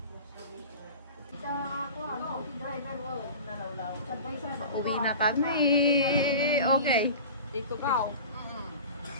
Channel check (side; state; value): both; inverted; correlation -0.35